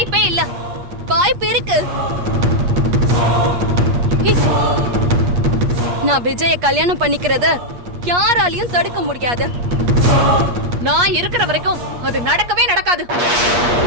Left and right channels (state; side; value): late; left; 8.4 ms